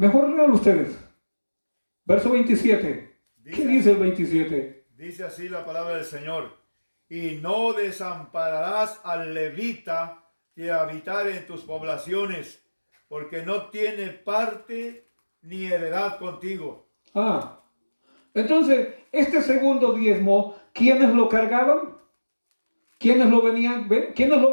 lean ustedes, verso 27, ¿qué dice el 27? Dice así la palabra del Señor: y no desampararás al levita que habitare en tus poblaciones, porque no tiene parte ni heredad contigo. Entonces, este segundo diezmo, ¿quiénes lo cargaban? ¿Quiénes lo vendían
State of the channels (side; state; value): both; inverted; correlation -1.00